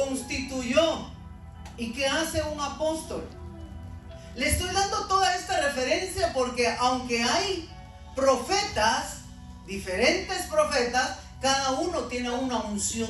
¿Y qué hace un apóstol? Le estoy dando toda esta referencia porque aunque hay profetas, diferentes profetas, cada uno tiene una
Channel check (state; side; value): identical; both; correlation 1.00